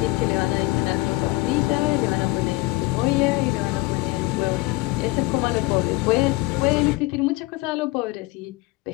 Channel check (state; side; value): quieter; right; 21.2 dB